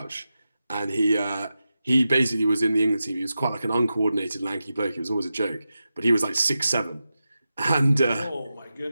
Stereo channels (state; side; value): inverted; both; correlation -0.91